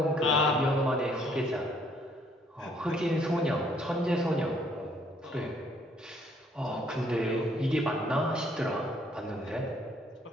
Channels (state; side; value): normal; both; correlation 0.65